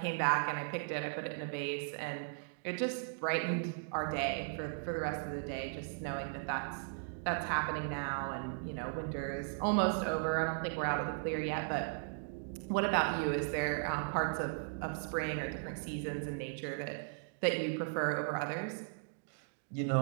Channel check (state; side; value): silent; left; digital silence